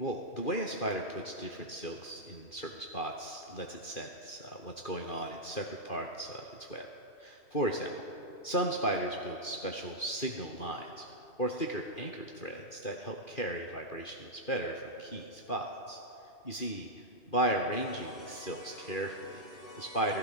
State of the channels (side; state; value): right; late; 2.4 ms